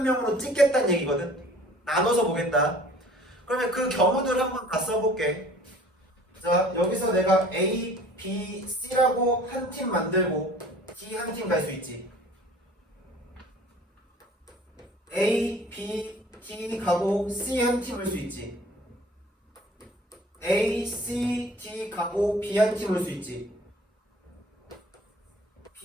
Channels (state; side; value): normal; both; correlation 0.50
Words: 찍겠다는 얘기거든. 나눠서 보겠다. 그러면 그 경우들을 한번 다 써볼게. 자, 여기서 내가 A, B, C라고 한 팀 만들고 D 한 팀 갈 수 있지. A, B, D 가고 C 한 팀 올 수 있지. A, C, D 가고 B 한 팀 올 수 있지.